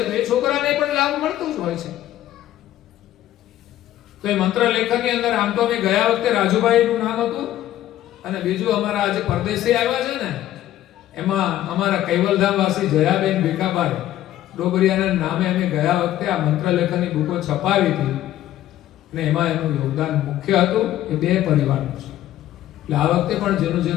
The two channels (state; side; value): quieter; right; 13.2 dB